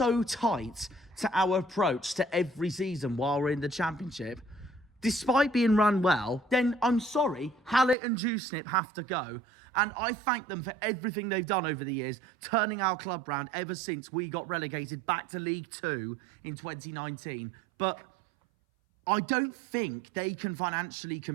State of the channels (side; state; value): left; drops out; at 8.0 s